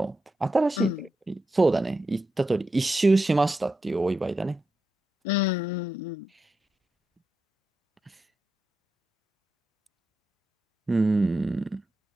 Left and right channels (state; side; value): normal; both; correlation 0.87